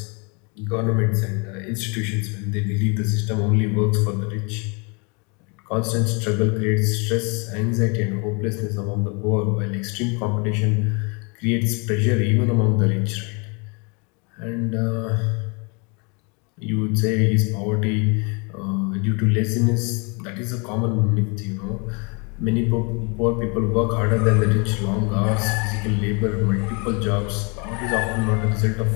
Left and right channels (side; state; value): right; quieter; 32.3 dB